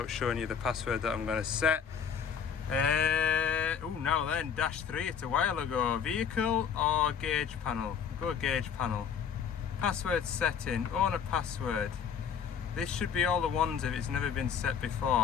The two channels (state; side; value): quieter; right; 7.3 dB